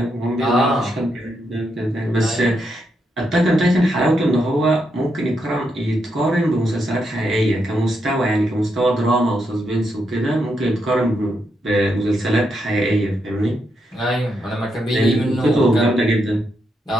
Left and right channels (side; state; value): both; normal; correlation 0.81